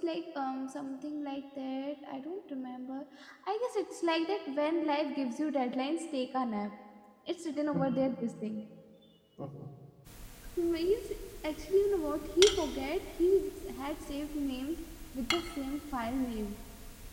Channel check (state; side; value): identical; both; correlation 1.00